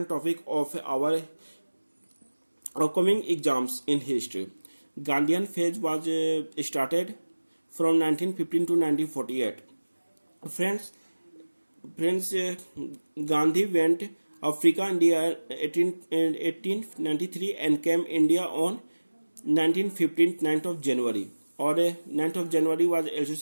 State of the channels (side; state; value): both; inverted; correlation -1.00